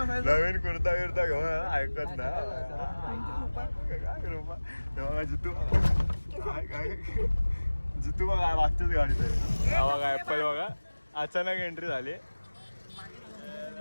नवीन कुर्ता बिर्ता घेऊन ऐकत ना काय कृपा. तेव्हा जितू काय जितू बघा मागच्याच गाडीत आहे. हा बघा ॲपल बघा अचानक एंट्री झाली.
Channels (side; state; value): both; inverted; correlation -1.00